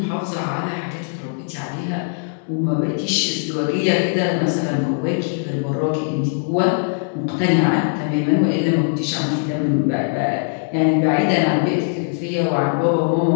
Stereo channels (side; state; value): right; silent; digital silence